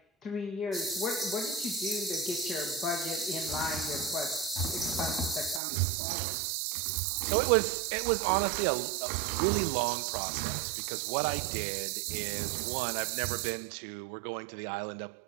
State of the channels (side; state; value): left; drops out; at 5.6 s